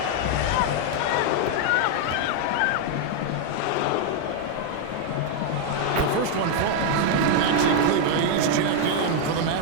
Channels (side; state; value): both; different; correlation 0.00